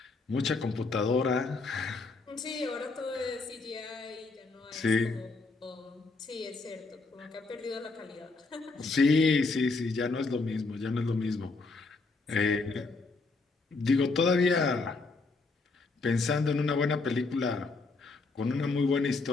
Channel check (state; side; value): quieter; right; 3.8 dB